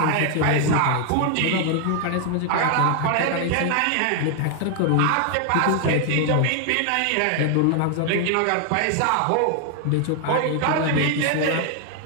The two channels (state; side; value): different; both; correlation 0.00